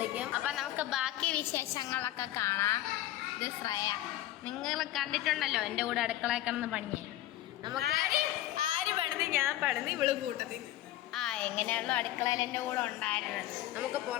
അപ്പം നമുക്ക് ബാക്കി വിശേഷങ്ങളൊക്കെ കാണാം. ഇത് ശ്രേയ, നിങ്ങൾ കണ്ടിട്ടുണ്ടല്ലോ എൻ്റെ കൂടെ അടുക്കളയിൽ കിടന്ന് പണിയെ. നമുക്ക് ആര് പണിത്? ഞാൻ പണിത്, ഇവള് കൂട്ടത്തിൽ. എങ്ങനെയാണല്ലോ അടുക്കളയിൽ എൻ്റെ കൂടെ ഉണ്ടായിരുന്നത്. നമുക്ക്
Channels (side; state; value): right; quieter; 14.6 dB